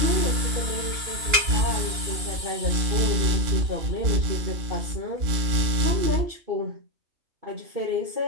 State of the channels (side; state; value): left; late; 2.9 ms